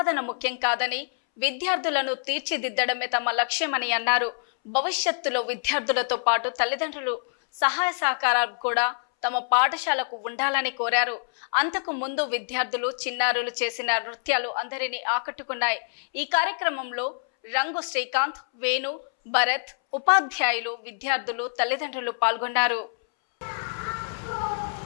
ముఖ్యం కాదని, విద్యార్థులను తీర్చిదిద్దడమే తమ లక్ష్యమని అన్నారు. భవిష్యత్తులో విద్యార్థులతో పాటు తల్లిదండ్రులు సహాయ సహకారాలు కూడా తమ పాఠశాలకు ఉండాలని కోరారు. అంతకు ముందు విద్యార్థులు చిన్నారులు చేసిన నృత్యాలు అందరినీ ఆకట్టుకున్నాయి. ఈ కార్యక్రమంలో రంగు శ్రీకాంత్, వేణు, భరత్, ఉపాధ్యాయులు, విద్యార్థులు, తల్లిదండ్రులు పాల్గొన్నారు.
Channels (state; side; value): silent; right; 61 dB below the other